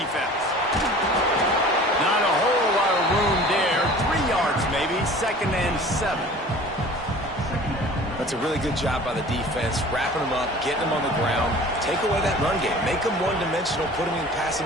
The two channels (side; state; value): both; normal; correlation 0.44